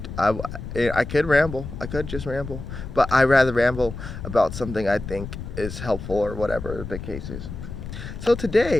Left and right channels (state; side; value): noise; left; rumble, 9 dB below the sound